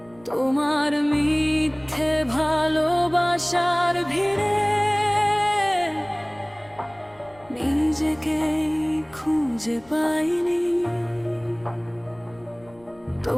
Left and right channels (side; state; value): left; noise; rumble, 27 dB below the sound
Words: তোমার মিথ্যে ভালোবাসার ভিড়ে। নিজেকেই খুঁজে পাইনি,